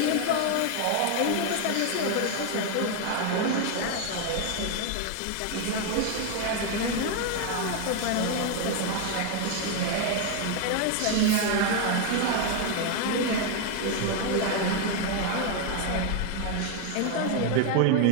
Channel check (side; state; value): both; different; correlation 0.01